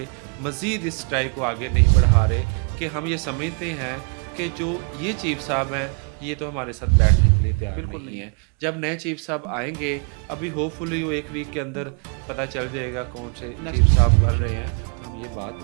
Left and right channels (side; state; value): left; quieter; 37.1 dB